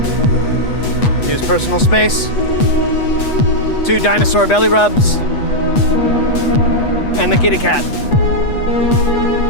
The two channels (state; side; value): late; right; 8.2 ms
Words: Use personal space. 2 dinosaur belly rubs. And the kitty cat.